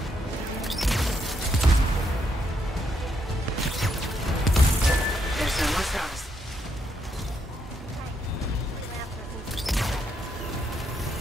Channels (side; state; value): both; normal; correlation 0.77